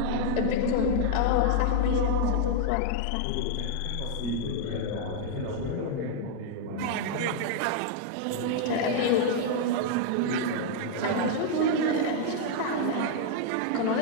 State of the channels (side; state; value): both; different; correlation 0.00